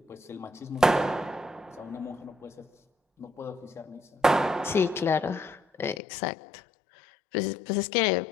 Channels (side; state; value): right; drops out; at 6.0 s